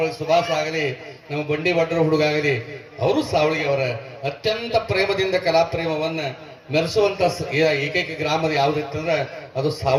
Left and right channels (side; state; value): both; identical; correlation 1.00